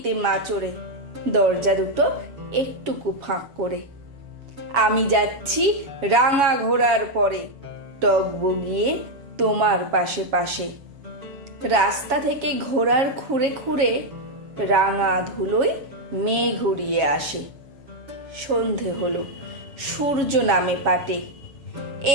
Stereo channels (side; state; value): left; late; 7.2 ms